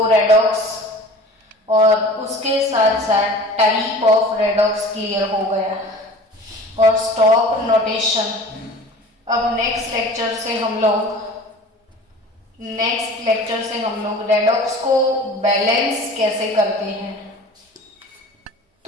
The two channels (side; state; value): both; normal; correlation 0.42